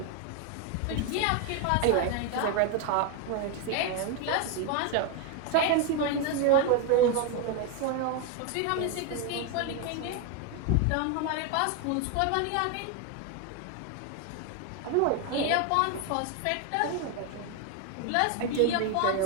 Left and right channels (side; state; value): both; different; correlation 0.01